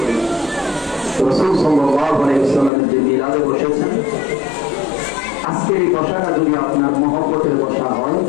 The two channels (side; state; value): right; drops out; at 2.7 s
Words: রাসূল সাল্লাল্লাহু আলাইহি ওয়াসাল্লামের যে মিলাদে বসেছেন, আজকের এই বসাটা যদি আপনার মহব্বতের বসা হয়,